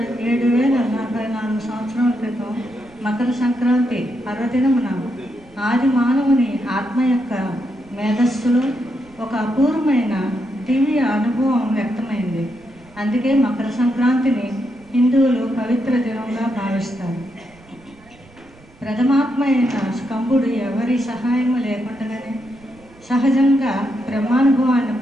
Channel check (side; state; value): right; noise; rumble, 26 dB below the sound